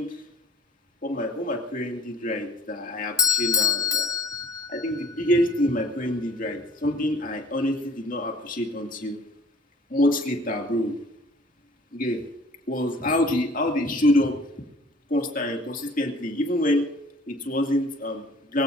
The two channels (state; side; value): normal; both; correlation 0.51